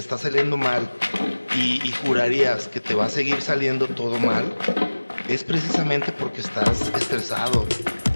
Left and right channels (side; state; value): both; inverted; correlation -1.00